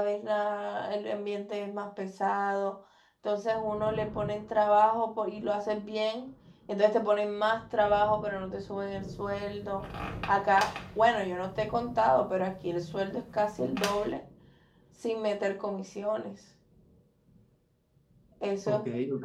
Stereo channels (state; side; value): identical; both; correlation 1.00